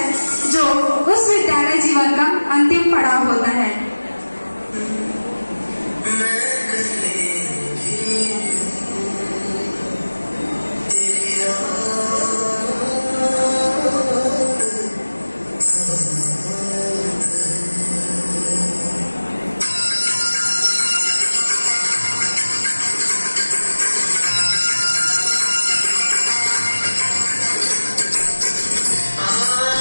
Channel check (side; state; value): both; inverted; correlation -1.00